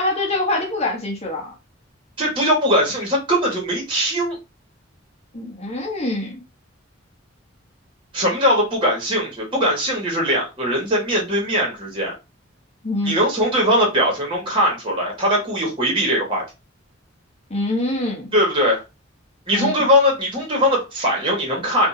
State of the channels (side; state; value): both; normal; correlation -0.05